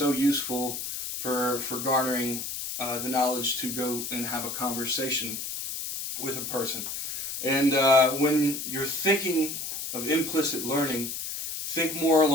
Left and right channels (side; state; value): left; noise; hiss, 5 dB below the sound